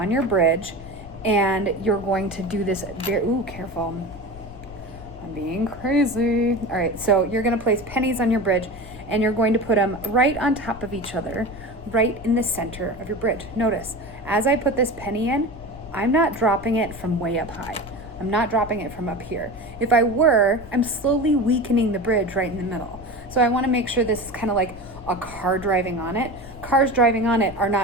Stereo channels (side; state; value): left; noise; rumble, 17 dB below the sound